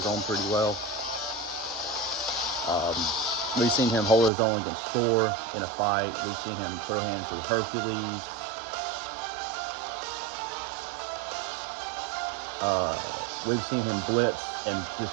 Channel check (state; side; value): drops out; left; at 4.3 s